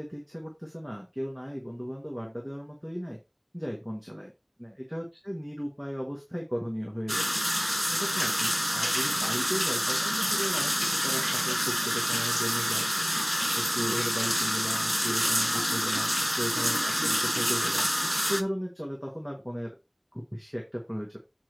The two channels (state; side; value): identical; both; correlation 1.00